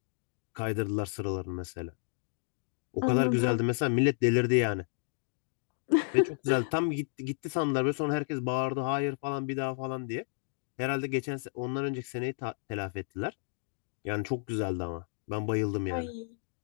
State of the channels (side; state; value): right; silent; digital silence